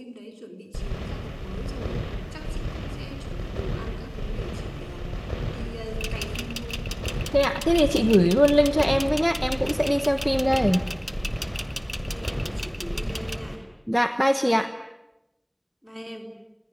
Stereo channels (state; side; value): identical; both; correlation 1.00